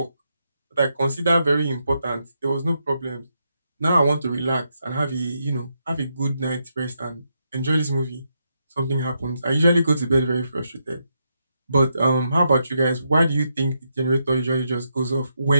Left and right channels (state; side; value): inverted; both; correlation -0.81